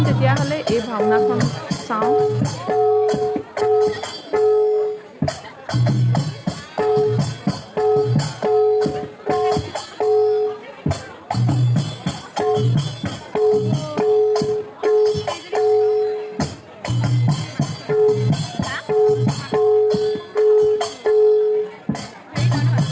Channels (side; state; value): both; identical; correlation 1.00